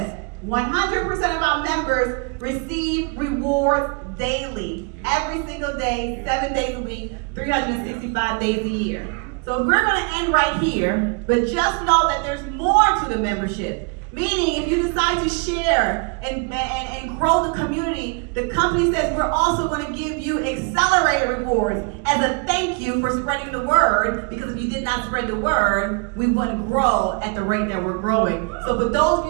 100% of our members receive rewards daily, every single day, 7 days a week, 365 days a year. So we're going to end right here, but just know that there's more to the membership. Meaning, if you decide to share and grow the community, the company says we're also going to give you accelerated rewards as a thank you for spreading the word, because if you did not spread the word, we wouldn't grow at the rate that we're growing. So for those of you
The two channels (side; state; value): left; quieter; 34.3 dB